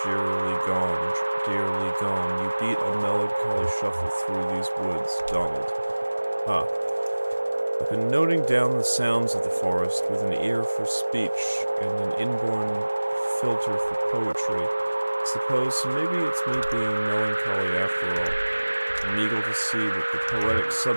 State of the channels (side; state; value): both; inverted; correlation -1.00